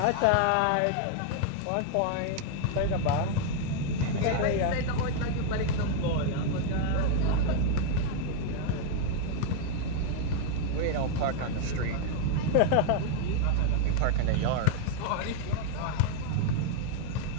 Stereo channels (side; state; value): both; different; correlation 0.00